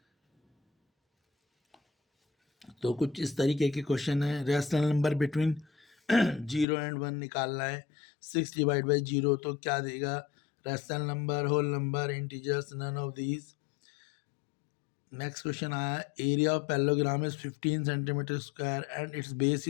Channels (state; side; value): drops out; right; at 6.7 s